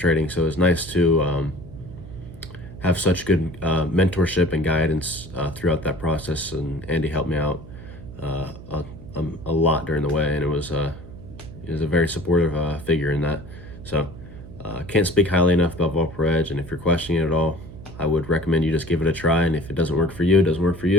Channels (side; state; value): right; noise; hum, 15 dB below the sound